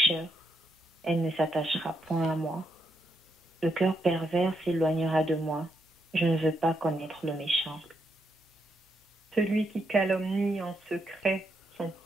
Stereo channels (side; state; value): both; normal; correlation 0.79